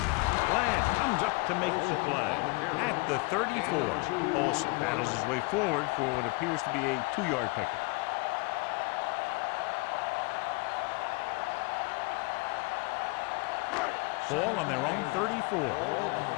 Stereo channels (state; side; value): quieter; right; 27.8 dB